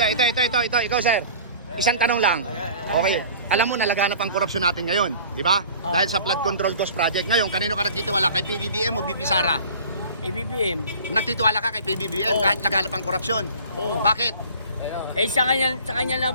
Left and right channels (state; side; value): inverted; both; correlation -0.45